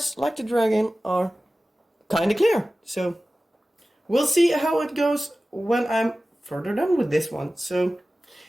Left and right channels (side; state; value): both; normal; correlation 0.96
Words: like the dragon, are kind of clear. So we'll see how it goes when I'm further done with this one. So